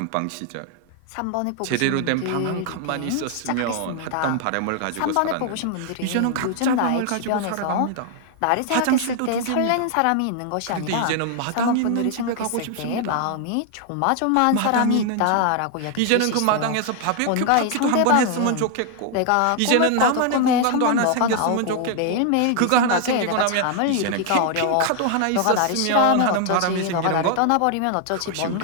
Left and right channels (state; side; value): different; both; correlation 0.00